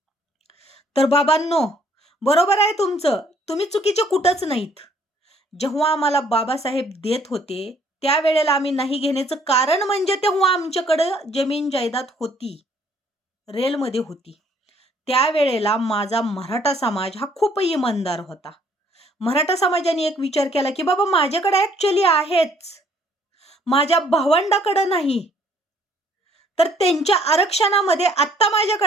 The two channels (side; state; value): both; normal; correlation 0.63